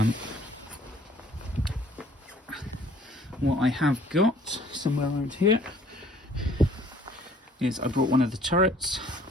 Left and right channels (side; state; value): both; normal; correlation 0.57